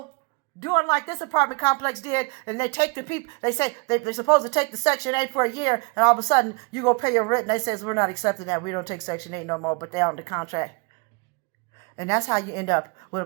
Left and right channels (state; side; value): quieter; left; 31.0 dB